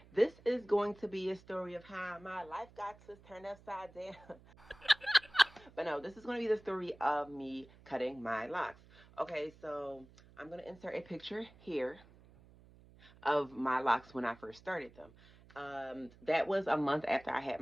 This is going to be a story of how my life got turned upside down. But no, this is going to be the story of me cutting my locks. Okay, so I'm going to insert a picture here of my locks when I first started them. That was a month after I had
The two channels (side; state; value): right; noise; hum, 24 dB below the sound